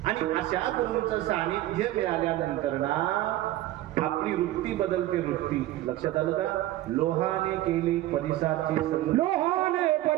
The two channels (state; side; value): quieter; left; 15.3 dB